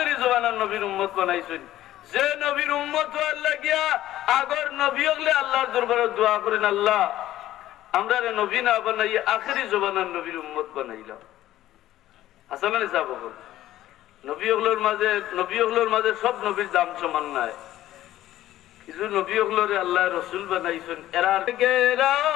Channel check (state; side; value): quieter; right; 14.1 dB